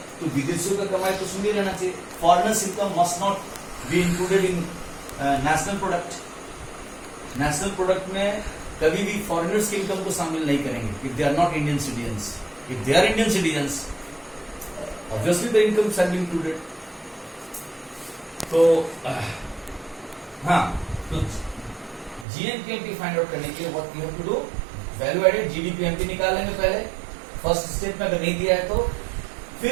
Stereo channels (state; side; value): drops out; left; at 22.2 s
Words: तो विदेशियों का कमाई तो सुन ही रहना चाहिए, foreigners income must not be included in national product. National product में कभी भी फॉरेनर्स की इनकम को शामिल नहीं करेंगे if they are not Indian citizens. If they are Indian citizens, obviously the income shall be included. तो हाँ, तो जीएनपीएमपी फाइंड आउट करने के लिए what you have to do, value added GDPMP निकालेंगे पहले, फर्स्ट स्टेप में अगर नहीं दिया है तो